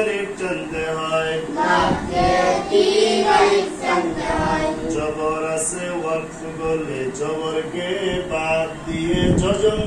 টানতে হয়। জবর আছে, ওয়াকফ করলে জবরকে বাদ দিয়ে জজম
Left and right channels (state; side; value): identical; both; correlation 1.00